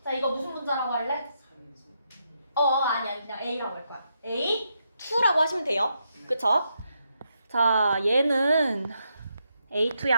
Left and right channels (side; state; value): both; inverted; correlation -0.81